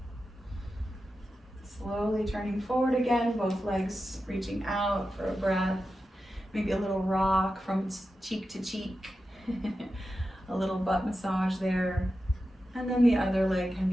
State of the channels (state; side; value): normal; both; correlation 0.91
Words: Slowly turning forward again, both legs reaching out for a breath. Maybe a little rock from cheek to cheek, a little butt massage there. And then the other leg can